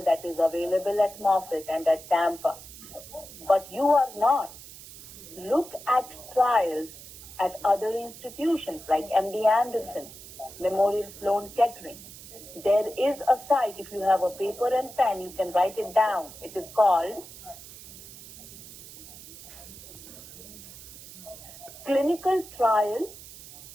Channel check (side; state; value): right; noise; hiss, 16 dB below the sound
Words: that is available at Moffitt and at Tampa. But you are not. Look at trials at other institutions like MD Anderson, Memorial Sloan Kettering. There is a site, if you have a paper and pen, you can write it down. It is called